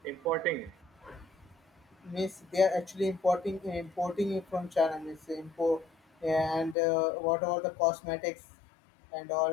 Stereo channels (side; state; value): right; drops out; at 6.8 s